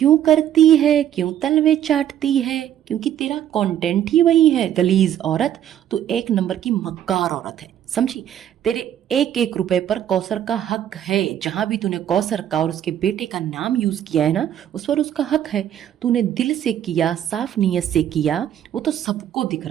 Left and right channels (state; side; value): quieter; left; 10.7 dB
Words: करती है, क्यों तलवे चाटती है? क्योंकि तेरा कंटेंट ही वही है, गलीज औरत। तू 1 नंबर की मक्कार औरत है, समझी? तेरे 1-1 रुपए पर कौसर का हक है। जहां भी तूने कौसर का और उसके बेटे का नाम यूज किया है ना, उस पर उसका हक है। तूने दिल से किया, साफ नीयत से किया, वो तो सबको दिख